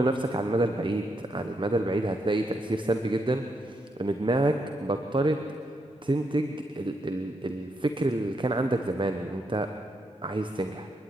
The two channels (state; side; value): normal; both; correlation 0.80